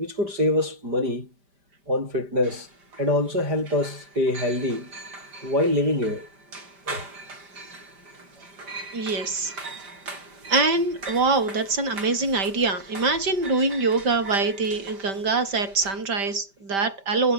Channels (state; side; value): late; left; 5.1 ms